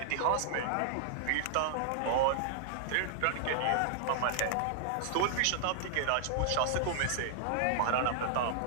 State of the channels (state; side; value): different; both; correlation -0.01